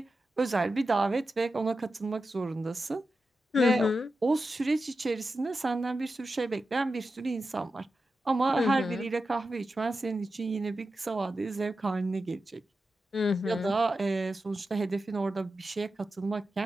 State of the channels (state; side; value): normal; both; correlation 0.91